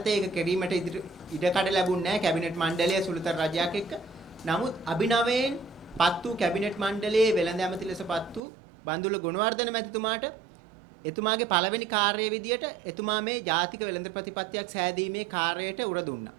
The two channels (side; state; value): left; drops out; at 8.4 s